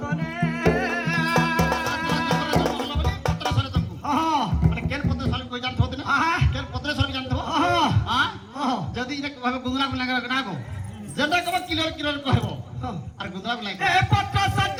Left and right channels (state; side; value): identical; both; correlation 1.00